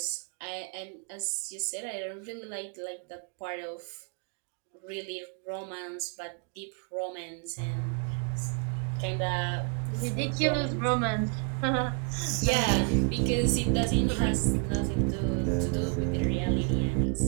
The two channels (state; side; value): quieter; left; 36.5 dB